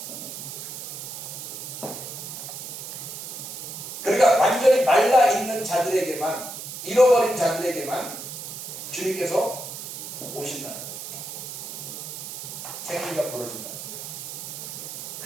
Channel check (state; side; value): noise; right; hiss, 8 dB below the sound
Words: 그러니까 완전히 말라 있는 자들에게만, 잃어버린 자들에게만 주님께서 오신다는 거죠. 생기가 벌어진다는 거예요.